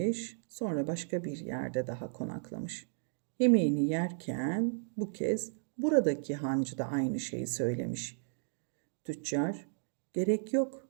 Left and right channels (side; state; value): left; silent; digital silence